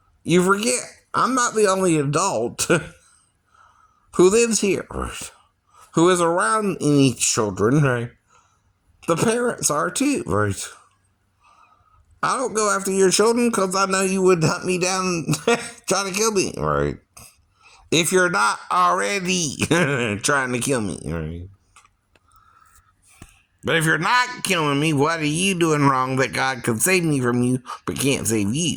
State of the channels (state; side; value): identical; both; correlation 1.00